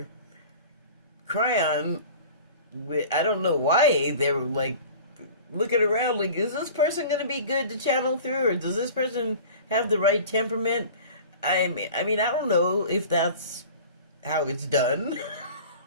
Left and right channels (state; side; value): inverted; both; correlation -0.40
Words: Cryon. I don't know why they were looking around is this person going to be good to channel through, or does this person have the right temperament? I mean, I don't know if that's how it's done.